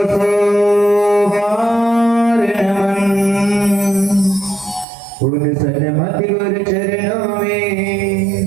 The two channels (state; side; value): drops out; left; at 4.9 s